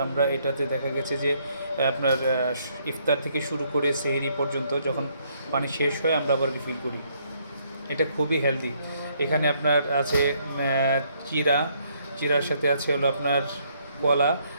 আমরা এটাতে দেখা গেছে যে আপনার ইফতার থেকে শুরু করে সেহরি পর্যন্ত যখন পানি শেষ হয় আমরা আবার রিফিল করি। এটা খুবই হেলদি। এখানে আপনার আছে চিরা, চিরার সাথে আছে হলো আপনার কলা,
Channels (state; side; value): inverted; both; correlation -0.69